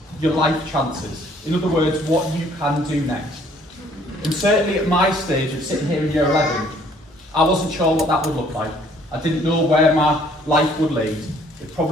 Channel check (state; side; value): normal; both; correlation 0.60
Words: your life chances. In other words, what you can do next. And certainly at my stage of sitting here in Year 11, I wasn't sure what that would look like. I didn't know where my life would lead. It